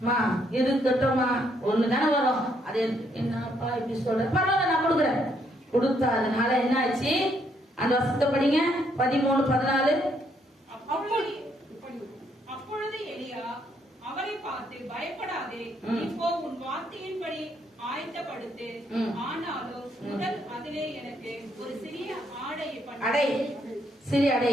இருக்கட்டும்மா ஒண்ணுதானே வரும், அது என்னப்பா இப்படி சொல்ற, பரவாயில்ல நான் கொடுக்குறேன். கொடுத்தா அதனால என்ன ஆச்சு, அந்த வசனத்தை படிங்க. 13:14. அப்பொழுது எலியா அவரை பார்த்து, பயப்படாதே, இப்போ உன் வார்த்தையின்படி ஆயத்தப்படுத்து. ஆனாலும் முதல் அதிலே எனக்கு ஒரு சிறிய ஆடையை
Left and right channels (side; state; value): both; normal; correlation 0.72